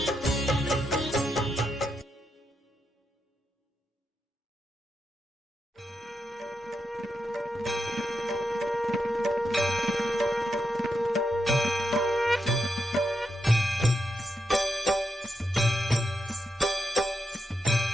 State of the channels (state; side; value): normal; both; correlation 0.84